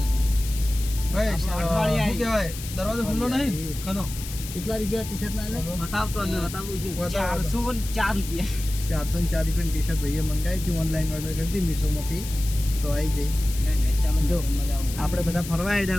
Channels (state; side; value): noise; left; hiss, 11 dB below the sound